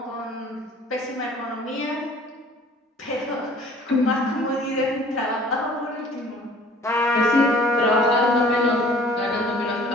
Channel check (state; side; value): normal; both; correlation 0.51